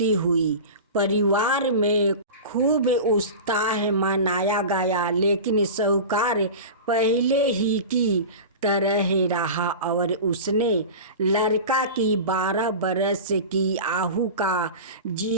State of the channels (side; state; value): both; inverted; correlation -0.31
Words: हुई। परिवार में खूब उत्साह मनाया गया, लेकिन साहूकार पहले ही की तरह रहा और उसने लड़का की 12 बरस की आयु का